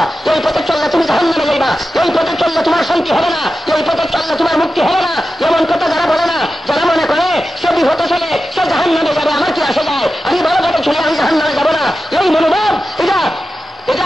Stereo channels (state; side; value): normal; both; correlation 0.92